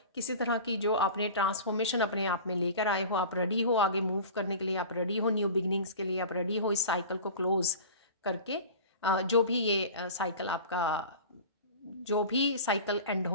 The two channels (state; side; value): inverted; both; correlation -0.36